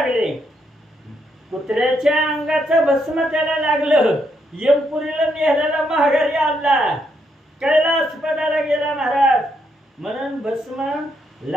कुत्र्याच्या अंगाचं भस्म त्याला लागलं. यमपुरीला नेहल्याला माघारी आणला, कैलासपदाला गेला महाराज. म्हणून भस्म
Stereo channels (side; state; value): both; normal; correlation 0.77